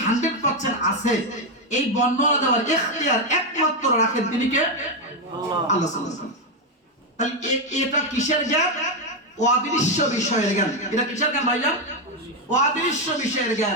100% আছে, এই বর্ণনা দেওয়ার ইখতিয়ার একমাত্র রাখেন তিনি কে? আল্লাহ সুবহানাহু ওয়া তাআলা। তাহলে এটা কিসের জ্ঞান? অদৃশ্য বিষয়ের জ্ঞান। এটা কিসের জ্ঞান ভাইজান? অদৃশ্য বিষয়ের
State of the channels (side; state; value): both; normal; correlation 0.05